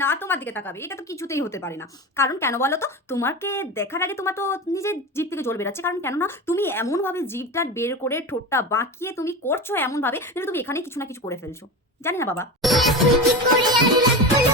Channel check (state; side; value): normal; both; correlation 0.25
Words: না, আর তোমার দিকে তাকাবে এটা তো কিছুতেই হতে পারে না। কারণ কেন বলো তো? তোমাকে দেখার আগে তোমার তো নিজের জিভ থেকে জল বেরাচ্ছে। কারণ কেননা তুমি এমনভাবে জিভটা বের করে ঠোঁটটা বাঁকিয়ে তুমি করছো এমনভাবে যেন তুমি এখানে কিছু না কিছু করে ফেলছো। জানি না বাবা।